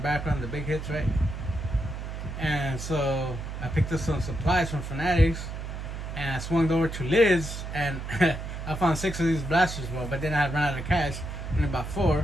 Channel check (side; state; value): right; noise; hum, 7 dB below the sound